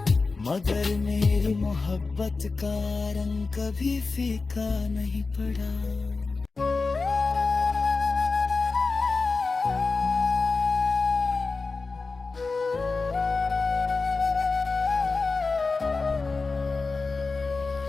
मगर मेरी मोहब्बत का रंग कभी फीका नहीं पड़ा।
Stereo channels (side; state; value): right; quieter; 4.0 dB